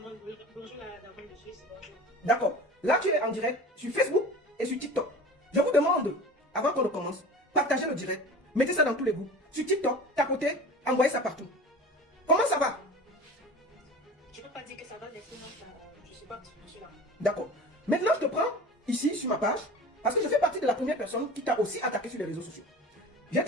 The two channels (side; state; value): both; normal; correlation 0.38